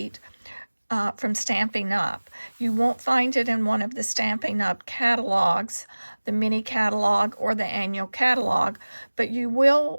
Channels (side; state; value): both; inverted; correlation -1.00